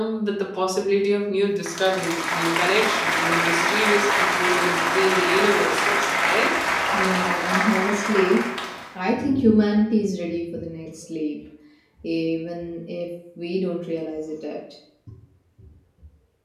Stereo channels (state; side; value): identical; both; correlation 1.00